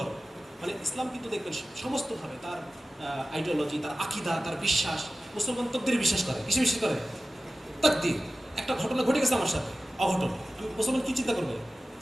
মানে ইসলাম কিন্তু দেখবেন সমস্তভাবে তার আইডিওলজি, তার আকিদা, তার বিশ্বাস, মুসলমান তকদিরে বিশ্বাস করে। কিসে বিশ্বাস করে? তাকদির। একটা ঘটনা ঘটে গেছে আমার সাথে, অঘটন, আমি মুসলমান কি চিন্তা করবে?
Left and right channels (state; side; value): normal; both; correlation 0.95